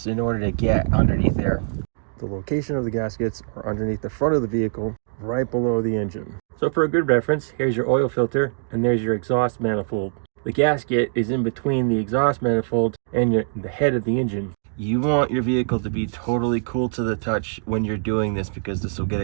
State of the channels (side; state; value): left; silent; digital silence